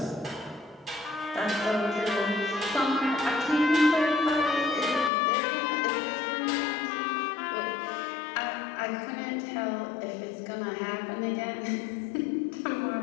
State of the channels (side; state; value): right; drops out; at 5.1 s